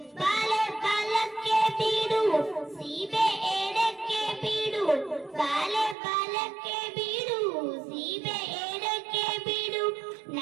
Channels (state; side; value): drops out; left; at 6.0 s